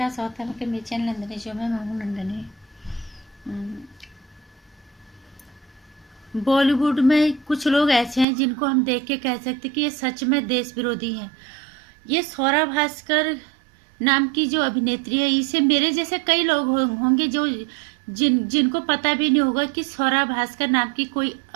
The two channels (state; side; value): drops out; left; at 8.2 s